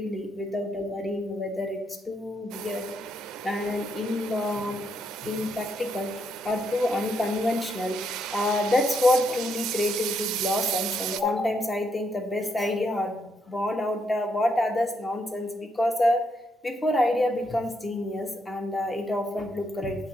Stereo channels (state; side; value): normal; both; correlation 0.77